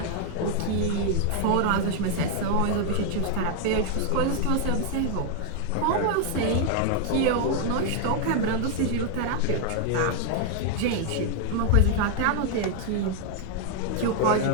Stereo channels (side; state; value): both; different; correlation 0.00